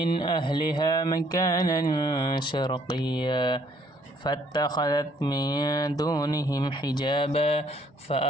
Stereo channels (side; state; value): both; normal; correlation 0.64